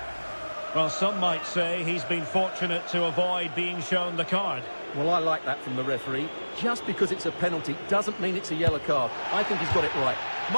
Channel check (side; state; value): both; inverted; correlation -1.00